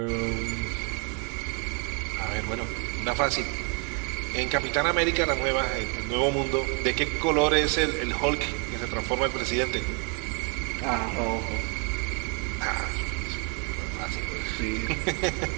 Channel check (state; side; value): quieter; left; 35.8 dB